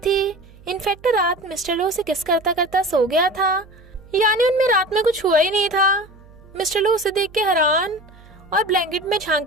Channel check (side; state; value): right; noise; hum, 24 dB below the sound